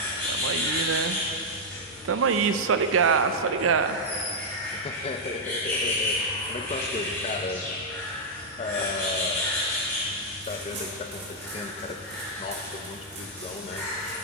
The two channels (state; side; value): normal; both; correlation -0.03